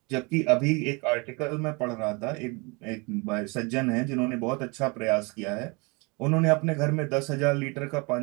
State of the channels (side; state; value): left; quieter; 29.2 dB